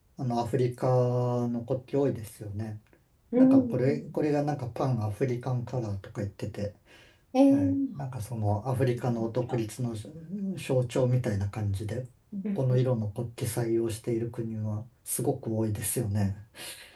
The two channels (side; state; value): both; identical; correlation 1.00